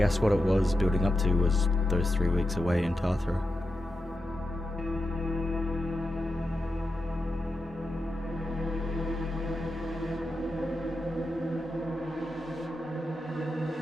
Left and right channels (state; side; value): normal; both; correlation 0.89